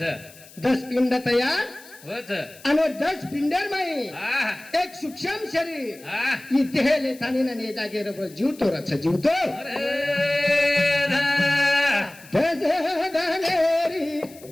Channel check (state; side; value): noise; left; hiss, 22 dB below the sound